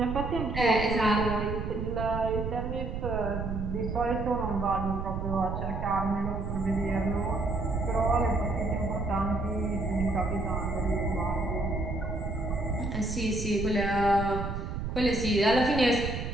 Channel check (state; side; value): noise; right; rumble, 4 dB below the sound